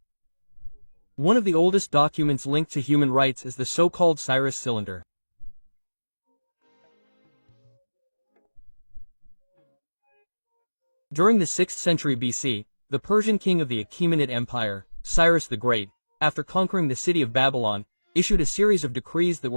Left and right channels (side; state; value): both; inverted; correlation -1.00